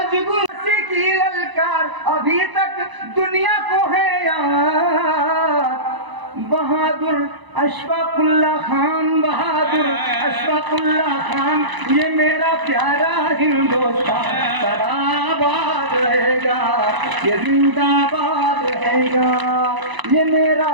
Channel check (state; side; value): late; left; 1.0 ms